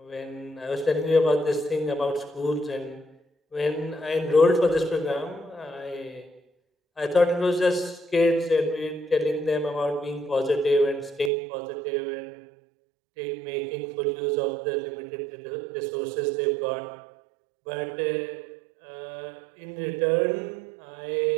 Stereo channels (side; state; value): left; drops out; at 11.3 s